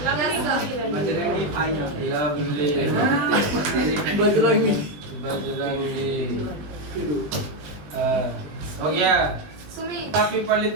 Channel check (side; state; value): left; late; 20 ms